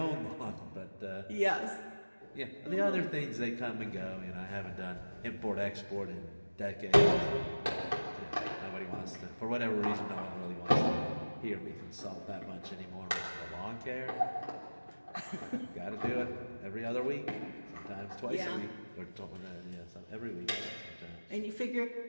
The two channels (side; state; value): both; inverted; correlation -1.00